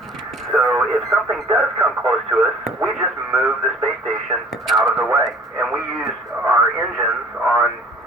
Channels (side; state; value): both; normal; correlation 0.51